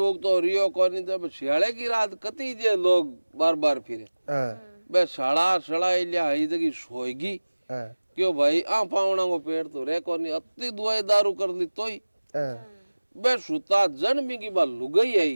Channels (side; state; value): both; inverted; correlation -1.00